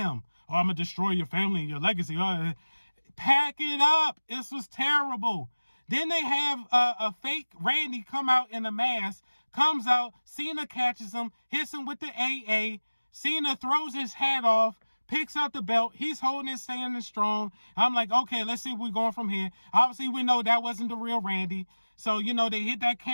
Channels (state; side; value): inverted; both; correlation -1.00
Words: Oh, I'm going to destroy your family and your legacy. Pack it up. This was terrible. Then they have a fake Randy come out in a mask, comes out, Cena catches him, hits him with the AA. Cena throws his hat off, picks up the belt. He's holding it, standing strong. I'm like, okay, let's see where we're going from here. Obviously, we know that wasn't the real Randy. So, they hit that